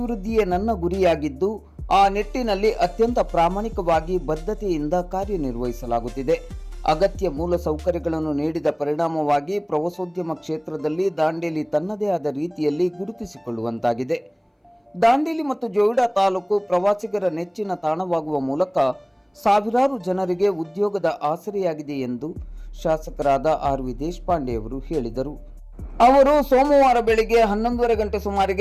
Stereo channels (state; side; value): identical; both; correlation 1.00